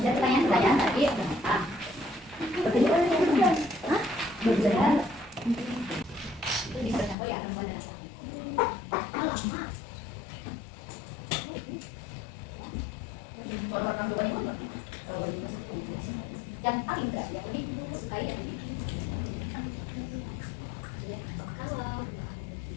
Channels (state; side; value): drops out; right; at 7.2 s